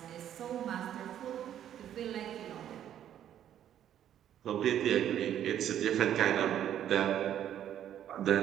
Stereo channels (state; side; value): quieter; left; 10.6 dB